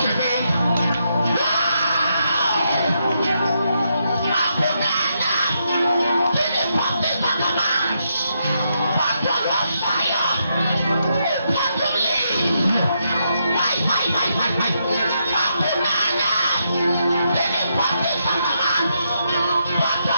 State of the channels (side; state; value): both; inverted; correlation -0.80